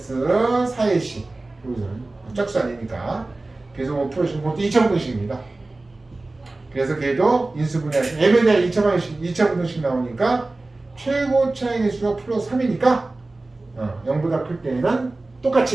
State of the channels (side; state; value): left; quieter; 3.1 dB